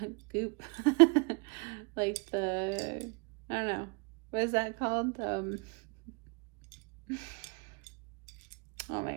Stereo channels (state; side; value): quieter; left; 33.8 dB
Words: Goop. Like the, I don't know. What is that called? Oh my